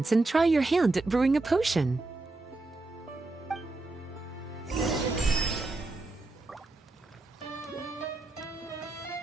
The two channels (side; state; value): left; quieter; 3.1 dB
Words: and try your hand at brewing a potion?